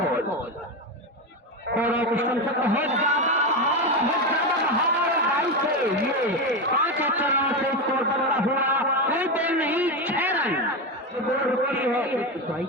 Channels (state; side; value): normal; both; correlation 0.14